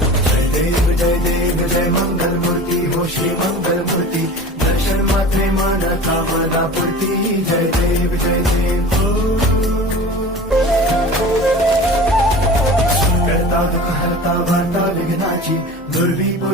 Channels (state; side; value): normal; both; correlation 0.37